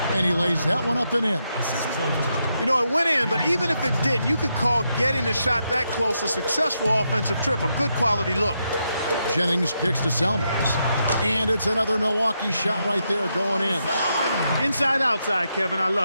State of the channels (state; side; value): inverted; both; correlation -0.82